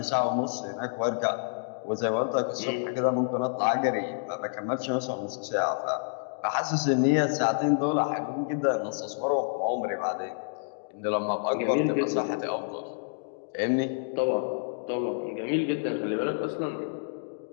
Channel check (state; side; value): silent; right; digital silence